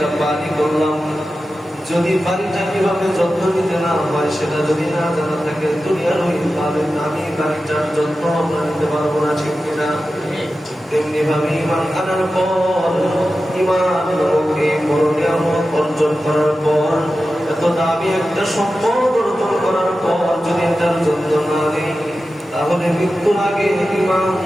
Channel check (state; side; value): normal; both; correlation 0.93